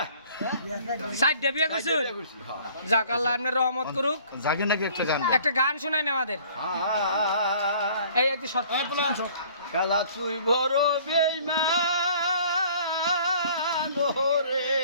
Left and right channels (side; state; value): both; inverted; correlation -0.53